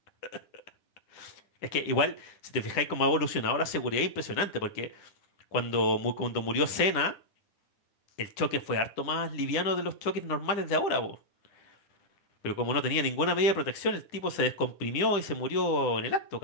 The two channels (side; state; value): right; late; 9.9 ms